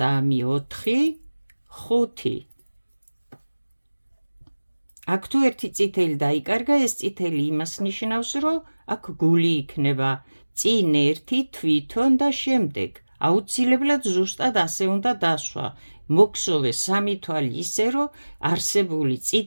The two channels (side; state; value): both; inverted; correlation -1.00